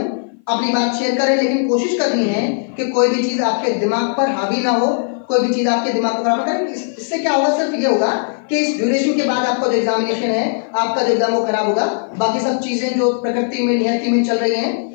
अपनी बात शेयर करें, लेकिन कोशिश करनी है कि कोई भी चीज आपके दिमाग पर हावी ना हो, कोई भी चीज आपके दिमाग को खराब ना करे। इससे क्या होगा? सिर्फ ये होगा कि इस ड्यूरेशन के बाद आपका जो एग्जामिनेशन है, आपका जो एग्जाम वो खराब होगा, बाकी सब चीजें जो प्रकृति में नियति में चल रही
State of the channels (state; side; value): silent; right; 56 dB below the other